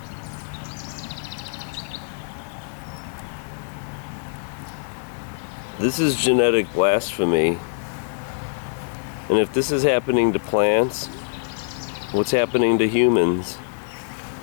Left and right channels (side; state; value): right; silent; 63 dB below the other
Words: This is genetic blasphemy. And if this is happening to plants, what's happening to humans?